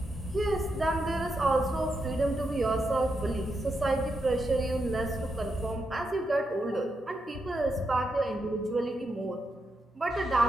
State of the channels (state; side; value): normal; both; correlation 0.84